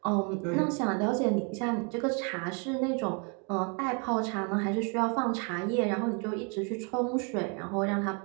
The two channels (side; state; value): left; quieter; 35.1 dB